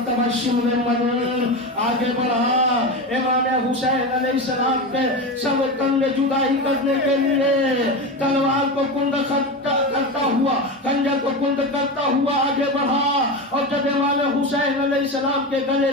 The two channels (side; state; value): both; normal; correlation 0.21